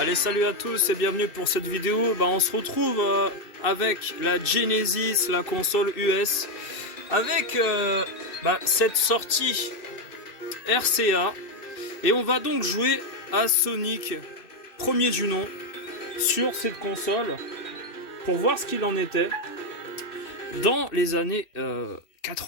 Allez, salut à tous et bienvenue pour cette vidéo. On se retrouve avec la Genesis, la console US, avec cette sortie RCA. Et on va donc jouer à Sonic, premier du nom, sur cette console, pour voir ce qu'il en était dans les années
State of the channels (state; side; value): late; right; 2.6 ms